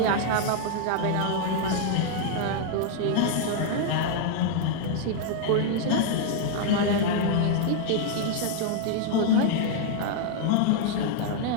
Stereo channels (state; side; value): different; both; correlation 0.00